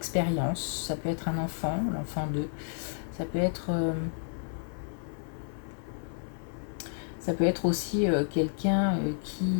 Ça peut être un enfant, l'enfant d'eux. Ça peut être aussi quelqu'un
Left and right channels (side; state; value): right; silent; 57 dB below the other